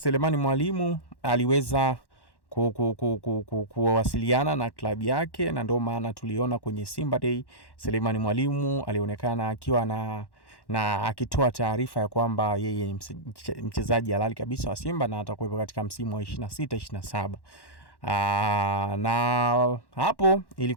Mwalimu aliweza kuwasiliana na klabu yake, na ndio maana tuliona kwenye Simba Day Selemani Mwalimu alionekana akiwa na akitoa taarifa ya kwamba yeye ni mchezaji halali kabisa wa Simba na atakuwepo katika msimu wa 26-27. Na hapo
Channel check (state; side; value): late; right; 1.1 ms